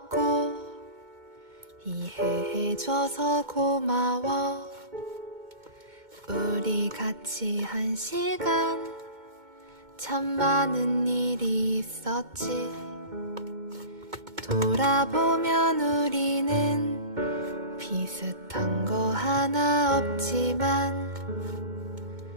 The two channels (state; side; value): late; left; 2.2 ms